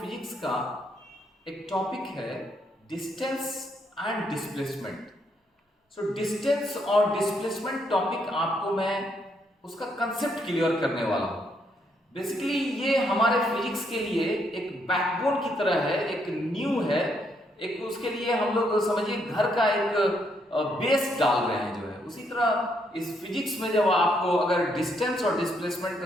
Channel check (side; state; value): both; normal; correlation 0.74